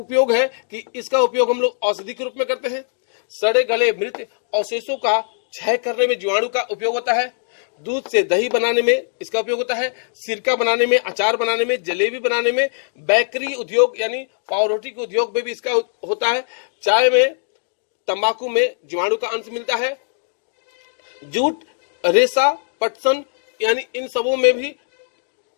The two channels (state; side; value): silent; right; digital silence